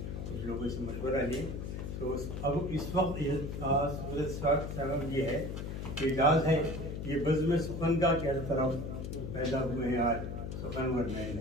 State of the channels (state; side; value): noise; left; hum, 6 dB below the sound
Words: कुछ लोगों से मशवरा लें। तो अब इस वक्त ये है कि इजाज़ है ये बज़्म सुखन का क्या तरफ पैदा हुए हैं आज सुखन और मैन